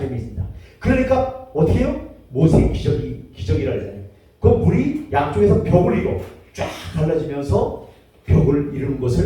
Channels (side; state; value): both; identical; correlation 1.00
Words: 내밀습니다. 그러니까 어떻게 해요? 모세의 기적이라 하잖아요. 그 물이 양쪽에서 벽을 이루어 쫙 갈라지면서 벽을 이루는